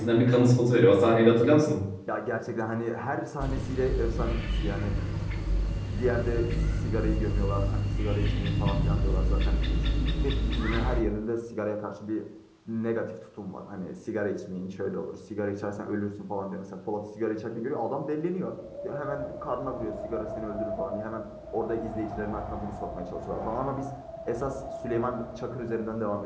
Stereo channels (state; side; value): identical; both; correlation 1.00